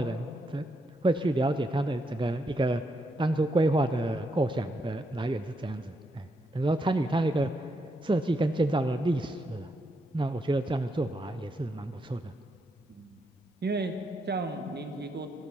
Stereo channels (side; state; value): both; normal; correlation 0.80